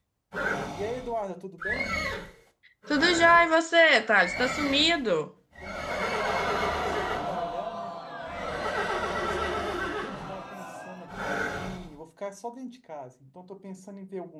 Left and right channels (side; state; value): both; identical; correlation 1.00